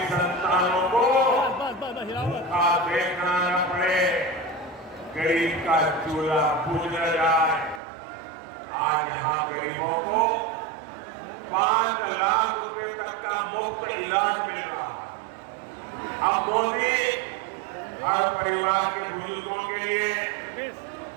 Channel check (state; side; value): drops out; left; at 7.8 s